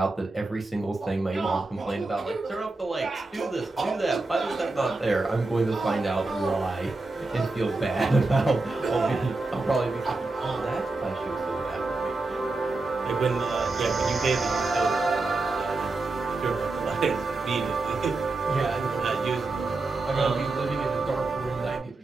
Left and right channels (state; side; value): quieter; left; 3.3 dB